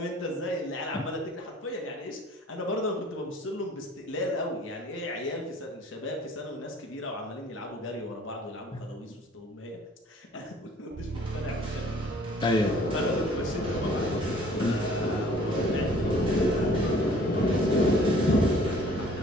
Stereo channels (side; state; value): both; normal; correlation 0.54